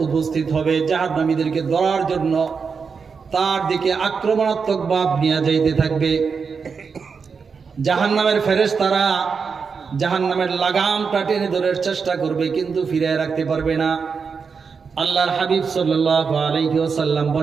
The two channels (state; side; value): quieter; left; 5.6 dB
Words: উপস্থিত হবে, জাহান্নামীদেরকে ধরার জন্য তার দিকে আক্রমণাত্মক ভাব নিয়ে যাইতে থাকবে। জাহান্নামের ফেরেশতারা জাহান্নামের লাগামটা টেনে ধরার চেষ্টা করবে, কিন্তু ফিরিয়ে রাখতে পারবে না। আল্লাহর হাবিব সাল্লাল্লাহু আলাইহি ওয়াসাল্লাম